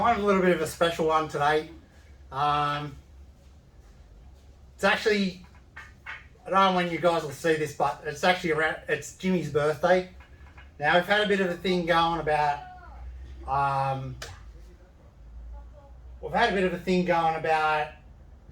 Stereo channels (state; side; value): identical; both; correlation 1.00